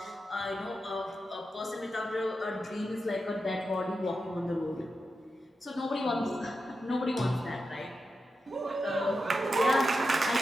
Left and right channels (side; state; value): both; normal; correlation 0.89